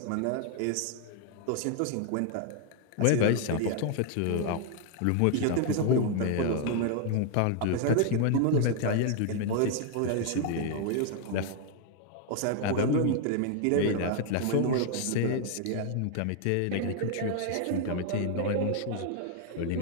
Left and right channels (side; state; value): both; different; correlation 0.00